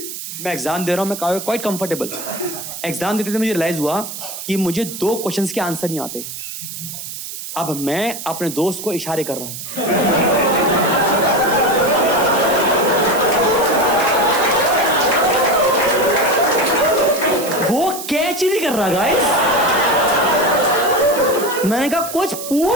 मैं एग्जाम दे रहा हूँ, मैं क्वाइट कंफर्टेबल। एग्जाम देते थे मुझे रियलाइज हुआ कि मुझे 2 क्वेश्चंस के आंसर नहीं आते। अब मैं अपने दोस्त को इशारे कर रहा हूं। वो कैच ही नहीं कर रहा गाइस। मैंने कहा कुछ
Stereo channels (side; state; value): right; noise; hiss, 9 dB below the sound